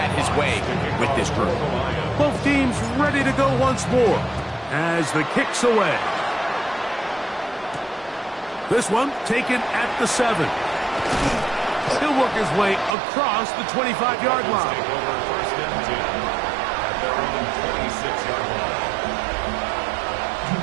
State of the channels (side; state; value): left; drops out; at 13.0 s